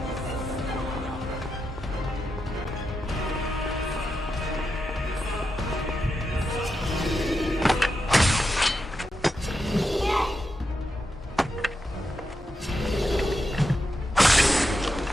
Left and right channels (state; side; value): normal; both; correlation 0.87